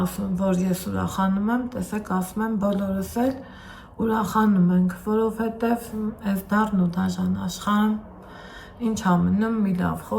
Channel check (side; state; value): both; identical; correlation 1.00